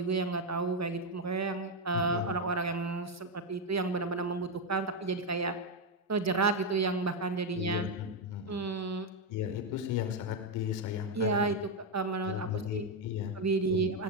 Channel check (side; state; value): both; normal; correlation 0.04